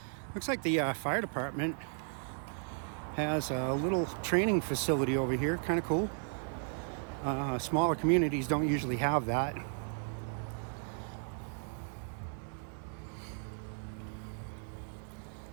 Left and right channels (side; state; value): left; silent; 54 dB below the other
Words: Looks like the fire department has a little training facility over here. Kind of cool. Smaller communities don't usually have that.